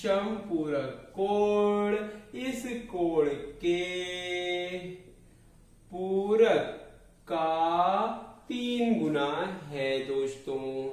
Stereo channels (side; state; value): both; identical; correlation 1.00